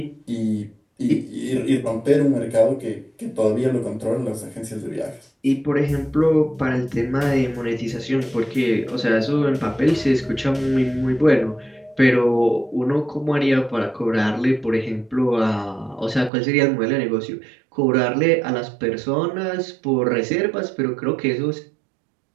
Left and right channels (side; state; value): left; drops out; at 16.3 s